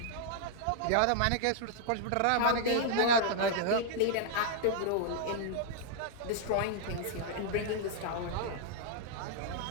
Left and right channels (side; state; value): both; different; correlation -0.01